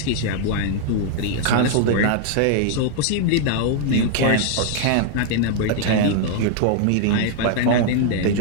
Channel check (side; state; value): both; different; correlation 0.00